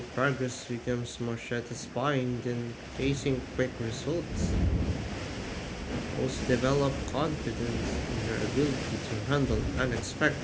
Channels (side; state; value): both; identical; correlation 1.00